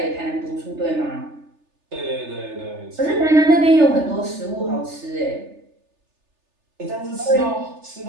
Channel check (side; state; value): left; late; 3.3 ms